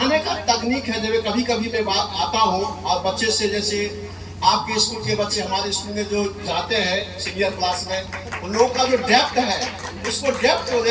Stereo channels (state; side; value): identical; both; correlation 1.00